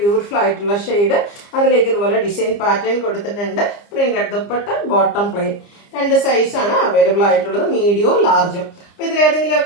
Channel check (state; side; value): late; right; 30 ms